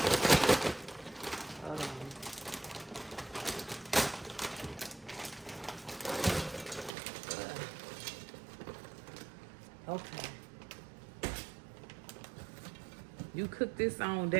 Hold on. Okay. You cook this on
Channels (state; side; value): drops out; left; at 6.9 s